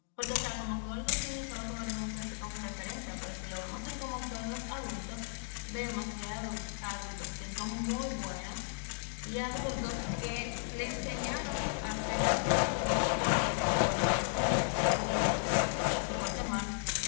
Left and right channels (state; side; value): silent; right; digital silence